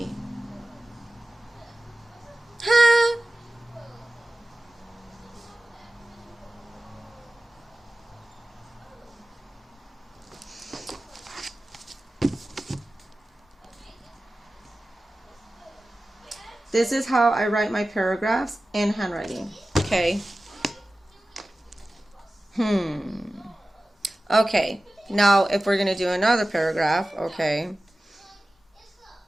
Huh? This is how I write my paragraphs in handwriting. Okay. Okay. Now, if we're going to do another paragraph, okay.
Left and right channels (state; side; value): normal; both; correlation 0.96